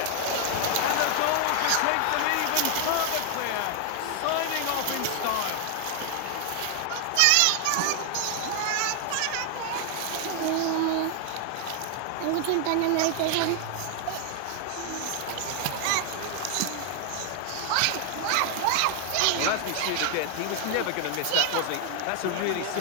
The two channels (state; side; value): different; both; correlation 0.00